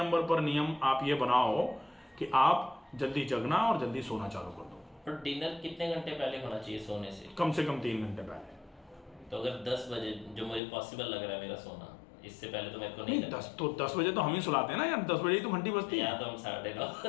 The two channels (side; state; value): right; drops out; at 10.6 s